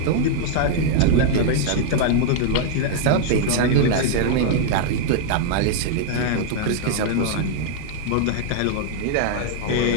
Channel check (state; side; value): different; both; correlation -0.01